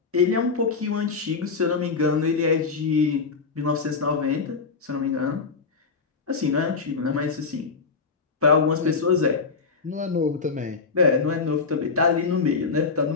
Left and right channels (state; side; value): quieter; right; 4.8 dB